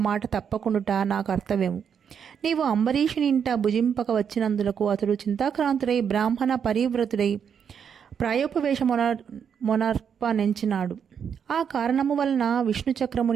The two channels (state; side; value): quieter; left; 7.5 dB